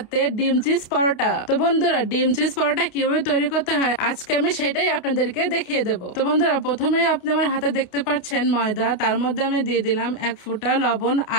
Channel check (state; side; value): late; right; 28 ms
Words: ডিম চিজ পরোটা। তো বন্ধুরা ডিম চিজ পরোটা কিভাবে তৈরি করতে হয় আজকে আমি সেটাই আপনাদেরকে দেখিয়ে দেব। তো বন্ধুরা প্রথমে আপনি আমার হাতে দেখতে পাচ্ছেন ময়দা, তার মধ্যে আমি দিয়ে দিলাম 1 ফোঁটা লবণ